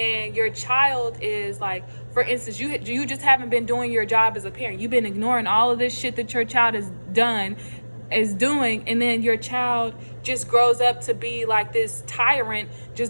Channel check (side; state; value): both; inverted; correlation -1.00